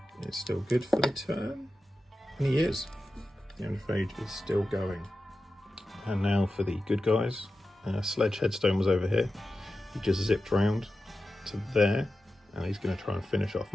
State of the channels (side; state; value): both; normal; correlation 0.92